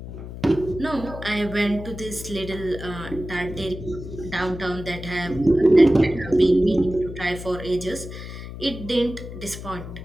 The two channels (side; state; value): left; noise; hum, 11 dB below the sound